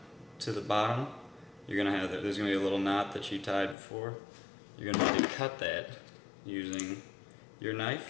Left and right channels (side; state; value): right; drops out; at 3.8 s